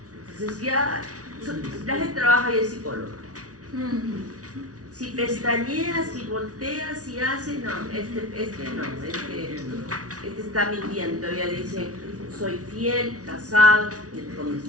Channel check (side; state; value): left; late; 0.67 ms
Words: Entonces ya, la gente trabaja y es psicólogo. Si pestañeas, si volteas, si hace, no, este está mintiendo, todavía dice, soy fiel, casado,